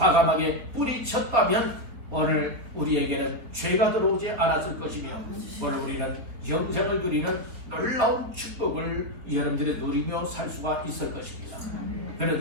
뿌리쳤다면 오늘 우리에게는 죄가 들어오지 않았을 것이며 오늘 우리는 영생을 누리는 놀라운 축복을 여러분들이 누리며 살 수가 있을 것입니다.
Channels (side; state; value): left; late; 3.9 ms